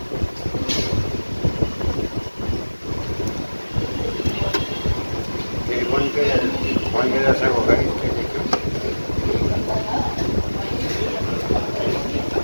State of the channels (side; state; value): both; inverted; correlation -1.00